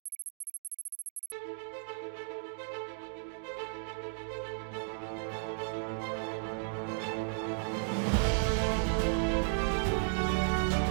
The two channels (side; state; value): left; silent; digital silence